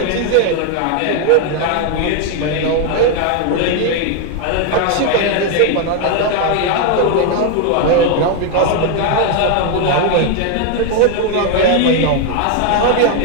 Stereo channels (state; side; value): different; both; correlation 0.01